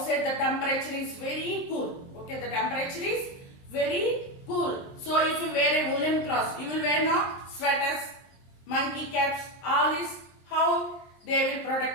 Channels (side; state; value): right; late; 23 ms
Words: the temperature is very cool. The temperature is very cool. So if you wear a woolen cloth, you will wear now sweaters, monkey caps, all this. How they will